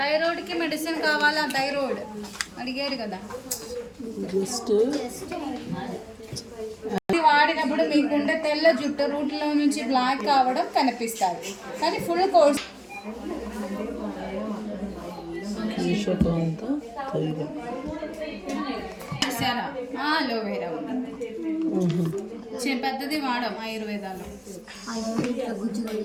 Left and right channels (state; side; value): identical; both; correlation 1.00